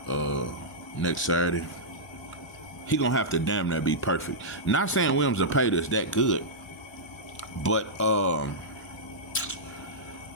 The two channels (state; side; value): normal; both; correlation -0.11